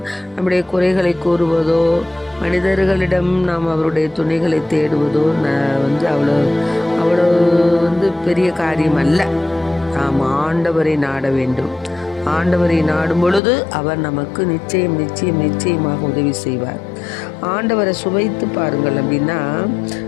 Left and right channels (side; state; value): right; drops out; at 13.4 s